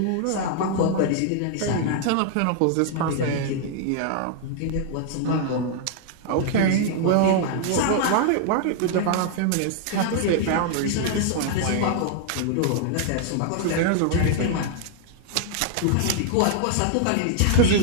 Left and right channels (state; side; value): different; both; correlation 0.00